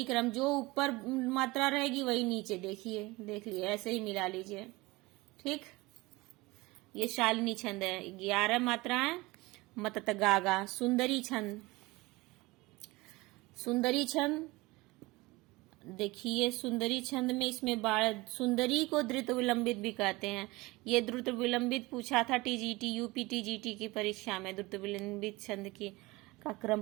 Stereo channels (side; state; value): left; quieter; 22.0 dB